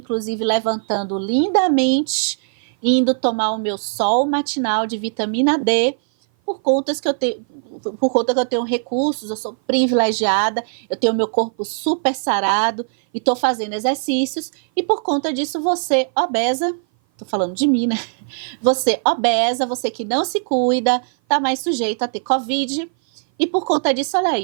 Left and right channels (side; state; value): left; silent; 57 dB below the other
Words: levantando lindamente, indo tomar o meu sol matinal de vitamina D, por conta que eu tenho recursos, eu sou privilegiada, eu tenho meu corpo super sarado e estou fazendo exercícios, e por conta disso você, obesa, estou falando de mim, né? Você obesa, você que não se cuida, tá mais sujeito a ter Covid, e por conta disso, olha